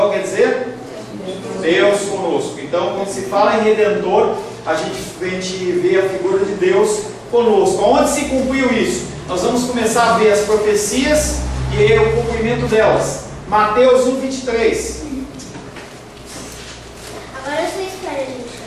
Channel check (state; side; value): identical; both; correlation 1.00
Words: quer dizer Deus conosco. Então, quando se fala em Redentor, a gente vê a figura de Deus conosco. Onde se cumpriu isso? Nós vamos começar a ver as profecias e o cumprimento delas. Mateus 1:23. Agora vocês querem a gente